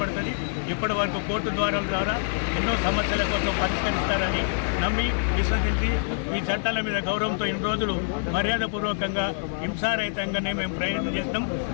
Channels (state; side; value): silent; right; digital silence